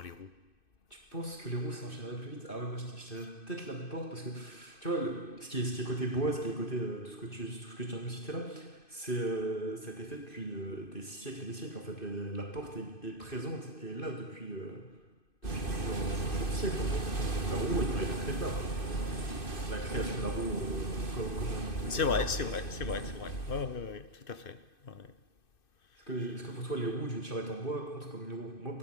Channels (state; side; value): late; right; 2.6 ms